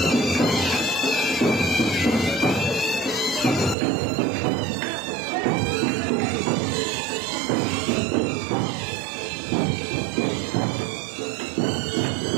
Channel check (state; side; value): drops out; left; at 3.8 s